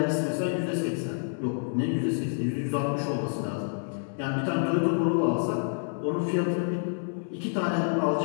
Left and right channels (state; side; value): silent; right; 59 dB below the other